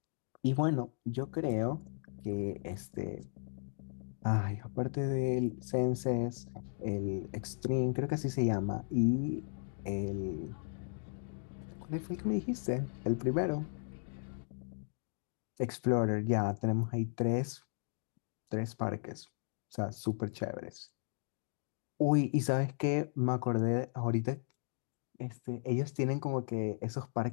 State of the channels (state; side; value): silent; right; digital silence